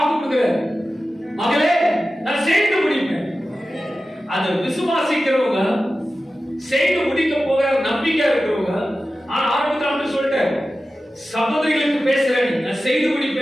கொடுக்கிறார். மகளே, நான் செய்து முடிப்பேன். அதை விசுவாசிக்கிறவங்க, செய்து முடிக்க போகிற நம்பிக்கை இருக்கிறவங்க. ஆனா ஆரம்பத்தில் சொல்லிட்டேன், சகோதரிகளுக்கு பேசுறேன், நான் செய்து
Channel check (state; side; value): normal; both; correlation 0.94